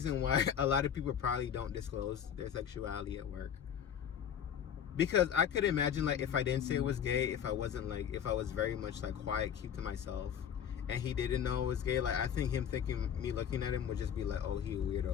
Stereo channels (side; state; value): right; quieter; 8.6 dB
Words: why a lot of people probably don't disclose their sexuality at work. Because I could imagine, like, if I didn't say it was gay, if I wasn't, like, if I was very much, like, quiet, keep to myself, and he didn't know it was gay, like, I think me looking at him would just be like, oh, he a